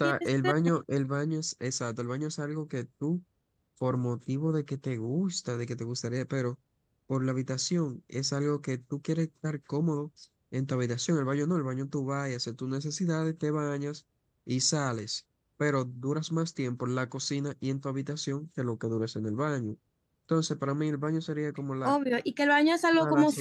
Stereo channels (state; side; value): identical; both; correlation 1.00